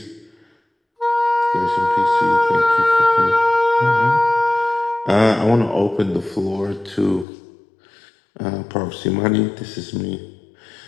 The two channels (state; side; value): drops out; right; at 7.2 s